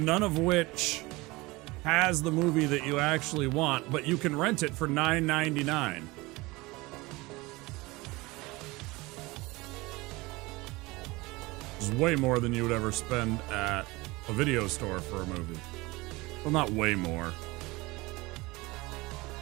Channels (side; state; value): left; quieter; 22.3 dB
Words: of which has the movie that you actually want, but you can rent it for $9.99. Which is way more than you would ever spend at a video store for a movie. Well, not way more.